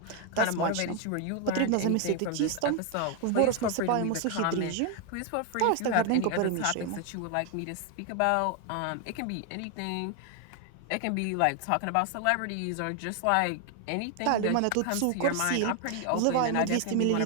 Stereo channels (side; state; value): both; different; correlation 0.01